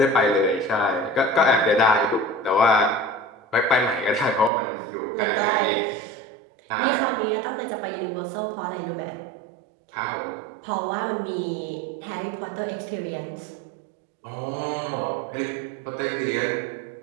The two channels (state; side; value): drops out; left; at 4.5 s